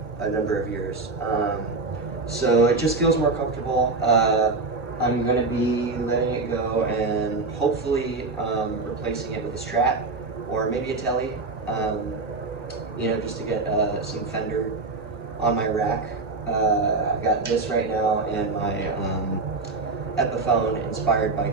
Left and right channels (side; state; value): left; quieter; 3.7 dB